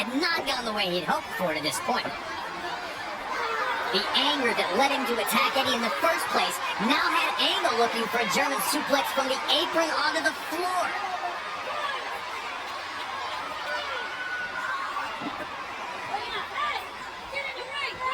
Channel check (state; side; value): identical; both; correlation 1.00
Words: not gone the way he'd hoped for to this point. The anger that led him to attack Eddie in the first place now had Angle looking for a German suplex from the apron onto the floor.